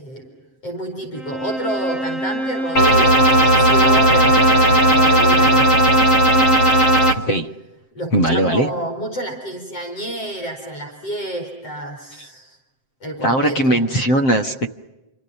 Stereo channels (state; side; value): late; right; 7.6 ms